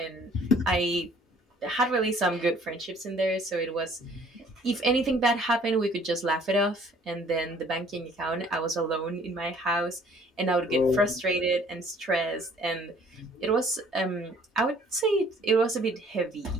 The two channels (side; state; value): both; normal; correlation 0.57